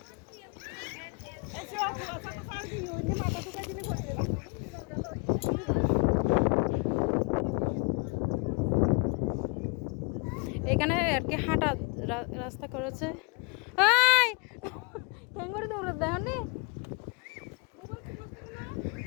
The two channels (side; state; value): right; quieter; 30.3 dB